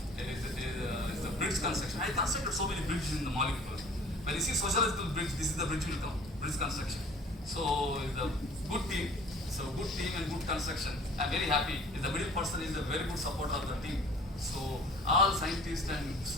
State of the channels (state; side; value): normal; both; correlation 0.50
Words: the bridge construction. I constructed so many bridges in the molecule. When you see sociological bridge, this is the bridge will come, bridge construction. So it's a good team. So good team and good construction. I'm very happy. The middle person is a very good supporter of the team. So all scientists and